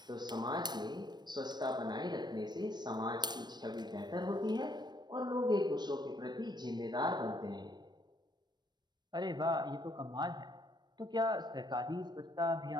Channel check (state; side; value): late; left; 0.21 ms